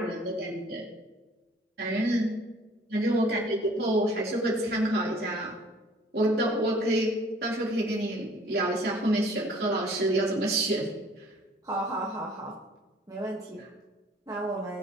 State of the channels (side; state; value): both; normal; correlation 0.54